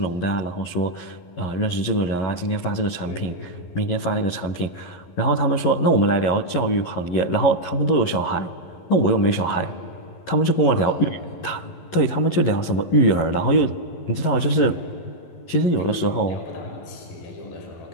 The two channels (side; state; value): right; late; 11 ms